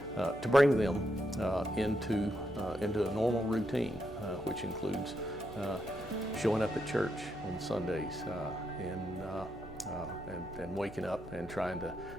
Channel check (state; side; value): noise; right; hum, 16 dB below the sound